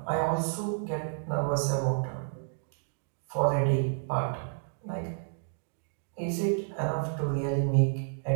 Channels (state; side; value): silent; left; digital silence